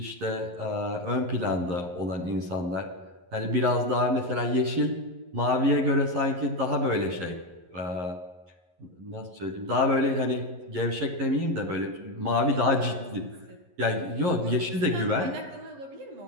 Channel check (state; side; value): late; left; 11 ms